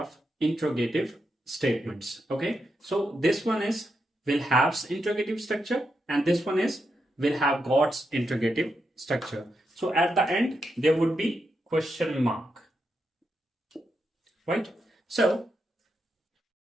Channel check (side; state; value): both; normal; correlation 0.84